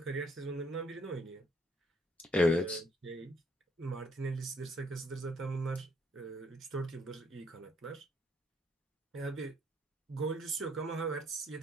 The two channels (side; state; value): both; normal; correlation 0.67